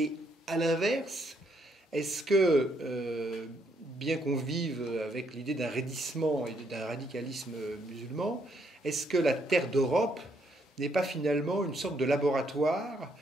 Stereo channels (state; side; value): normal; both; correlation 0.72